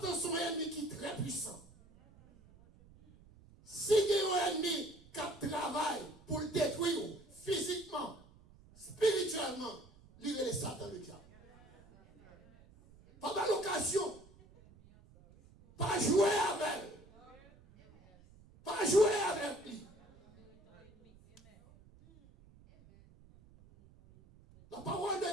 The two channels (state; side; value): noise; right; rumble, 25 dB below the sound